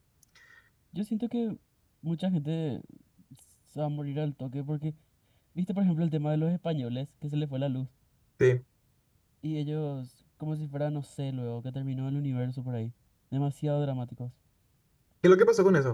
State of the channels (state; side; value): identical; both; correlation 1.00